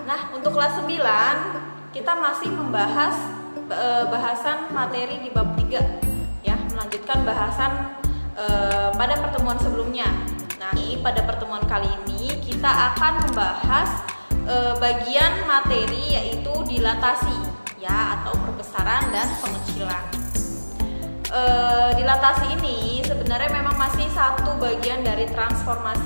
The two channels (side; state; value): both; inverted; correlation -1.00